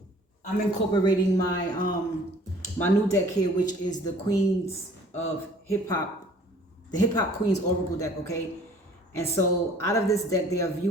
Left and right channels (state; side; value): normal; both; correlation 0.53